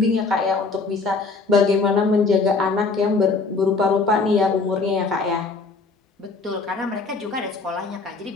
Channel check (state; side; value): quieter; right; 4.0 dB